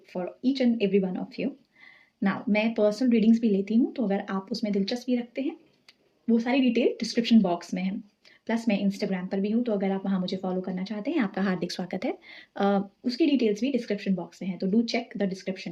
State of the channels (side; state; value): both; identical; correlation 1.00